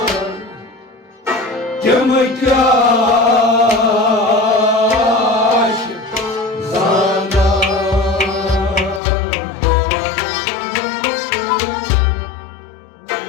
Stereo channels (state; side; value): drops out; right; at 9.0 s